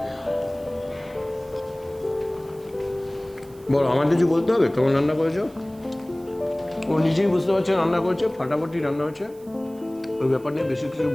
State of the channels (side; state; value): right; noise; hiss, 27 dB below the sound